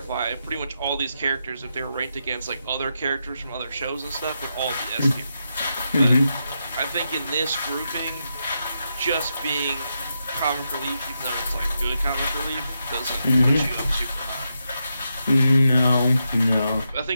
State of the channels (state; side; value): inverted; both; correlation -0.85